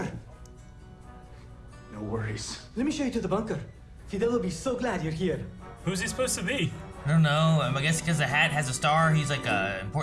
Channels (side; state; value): both; identical; correlation 1.00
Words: No worries. Let me show you to the bunker. Fidel will be so glad you're here. Who's he supposed to be? I don't know. I guess because the hat has a star, he's like a